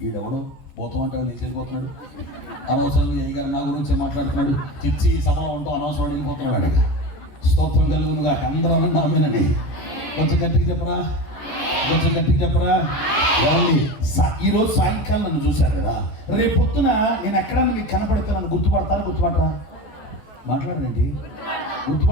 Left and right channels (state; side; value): late; right; 14 ms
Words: ఈడెవడో పోతాం అంటే నీకు వెళ్ళిపోతున్నాడు. అనవసరంగా ఏ గారు నా గురించే మాట్లాడుతున్నాడు. చిచ్చి సభలో ఉంటూ అనవసరం వెళ్ళిపోతున్నాడు. అడిగా స్తోత్రం కలుగునుగా. అందరూ అన్న ఆమెనండి. కొంచెం గట్టిగా చెప్పరా, కొంచెం గట్టిగా చెప్పరా. ఈరోజు సాయంకాలం నన్ను చూశారు కదా, రేపు పొద్దున నేను ఎక్కడన్నా మీకు కనపడతానని గుర్తుపడతారా? గుర్తుపడరా? మాట్లాడండి.